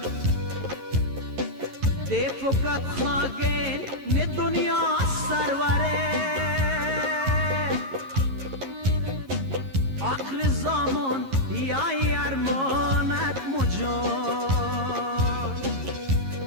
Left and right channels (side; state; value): left; late; 11 ms